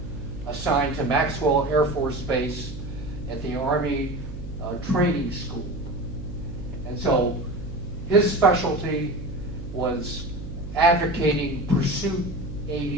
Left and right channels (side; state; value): right; noise; hum, 9 dB below the sound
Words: assigned to Maxwell Air Force Base at the Army Training School. And so his specialty was advocating pursuit